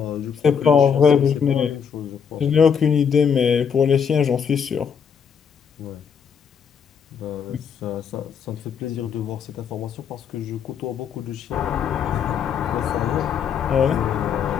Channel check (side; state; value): right; quieter; 7.0 dB